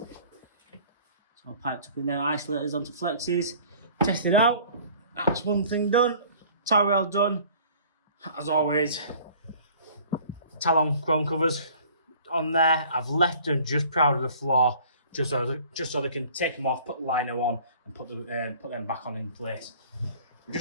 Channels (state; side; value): inverted; both; correlation -0.50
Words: I've piped up in there, isolators onto flexes, tested out. That's one thing done. Towel rail done. As always, Talon chrome covers on there. I've left them just proud of the floor, just so they can take them off, put the liner on, and put them back on in place. We're